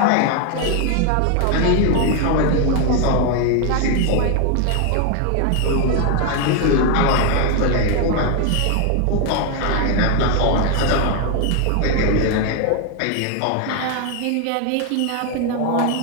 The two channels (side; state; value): both; different; correlation 0.01